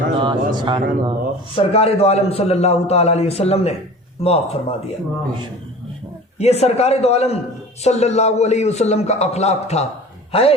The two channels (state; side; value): normal; both; correlation 0.40